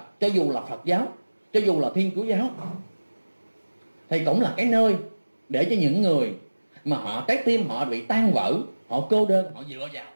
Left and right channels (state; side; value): inverted; both; correlation -1.00